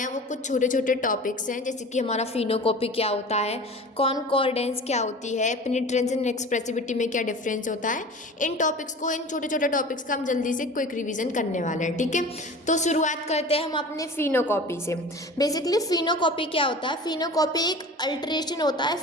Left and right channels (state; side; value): normal; both; correlation 0.38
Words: वो कुछ छोटे छोटे टॉपिक्स हैं, जैसे कि हमारा फिनोकॉपी क्या होता है, कॉनकॉर्डेंस क्या होती है, पेनिट्रेंस एंड एक्सप्रेसिविटी में क्या डिफरेंस होता है। इन छोटे छोटे टॉपिक्स का हम जल्दी से क्विक रिविजन करने वाले हैं, ठीक है। तो शुरुआत करते हैं हम अपने फिनोकॉपी से। बेसिकली फिनोकॉपी क्या होता है? फिनोकॉपी एक अल्टरेशन होता है